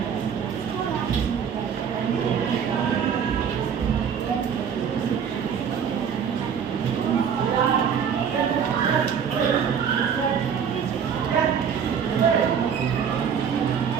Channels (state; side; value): quieter; left; 7.5 dB